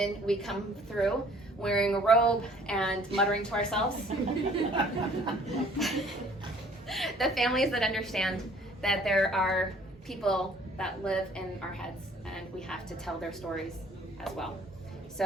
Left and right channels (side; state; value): both; normal; correlation 0.56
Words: we come through wearing a robe and muttering to ourselves. The families that understand that there are people that live in our heads and we have to tell their stories as well.